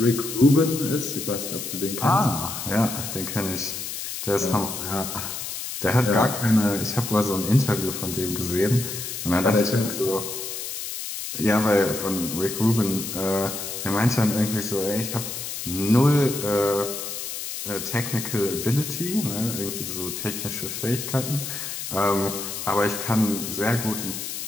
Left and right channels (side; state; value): left; noise; hiss, 6 dB below the sound